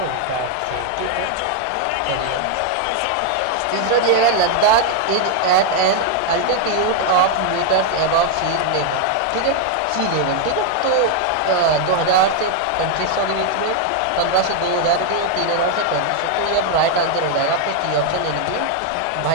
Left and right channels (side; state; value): both; different; correlation 0.00